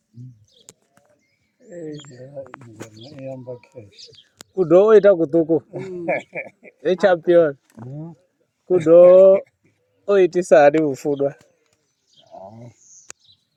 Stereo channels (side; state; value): both; identical; correlation 1.00